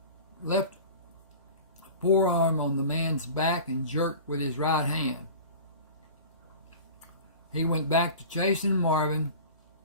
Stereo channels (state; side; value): inverted; both; correlation -0.37